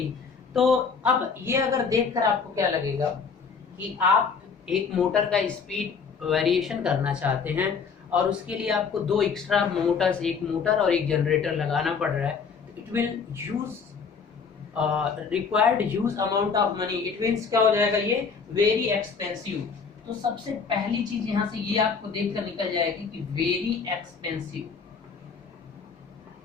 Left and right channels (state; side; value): quieter; right; 5.6 dB